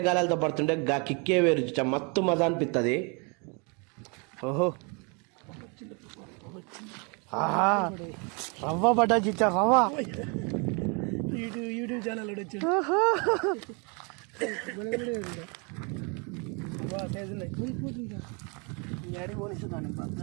పడుతుంటే గా కిక్కే వేరు చిచ్చా, మస్తు మజా అనిపిస్తుంది. ఓహో, ఆహా రవ్వ పడ్డా చిచ్చా, రవ్వ యూట్యూబ్ ఛానల్ వచ్చాడు.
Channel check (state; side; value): quieter; left; 33.3 dB